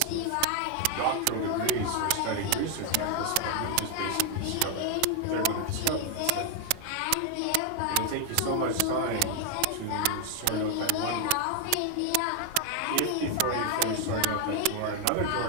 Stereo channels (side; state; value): both; different; correlation 0.00